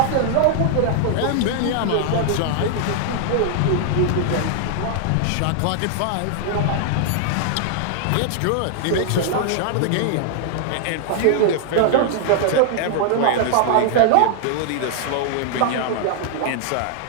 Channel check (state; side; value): different; both; correlation 0.00